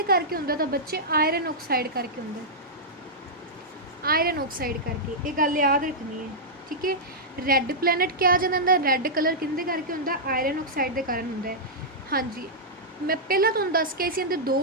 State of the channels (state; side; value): normal; both; correlation -0.10